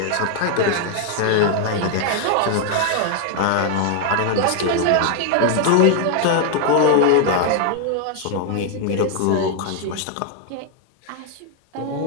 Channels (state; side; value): different; both; correlation 0.00